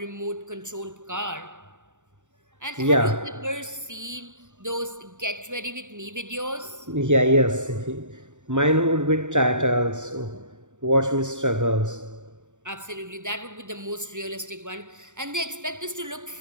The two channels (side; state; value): left; late; 0.85 ms